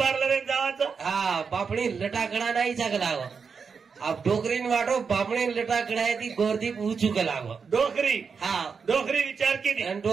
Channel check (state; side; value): quieter; left; 5.7 dB